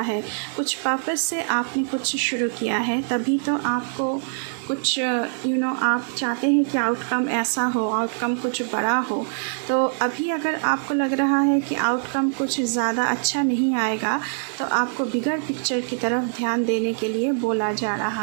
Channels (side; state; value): left; silent; 63 dB below the other